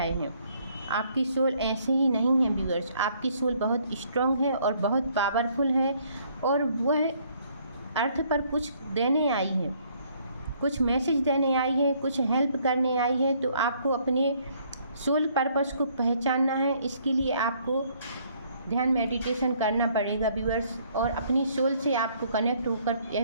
हैं। आपकी सोल ऐसे ही नहीं है व्यूअर्स, आपकी सोल बहुत स्ट्रॉन्ग है और बहुत पावरफुल है, और वह अर्थ पर कुछ देने आई है, कुछ मैसेज देने आई है, कुछ हेल्प करने आई है। तो आपको अपने सोल पर्पस को पहचानना है, इसके लिए आपको ध्यान मेडिटेशन करना पड़ेगा व्यूअर्स, और अपनी सोल से आपको कनेक्ट होकर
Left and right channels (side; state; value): both; inverted; correlation -0.65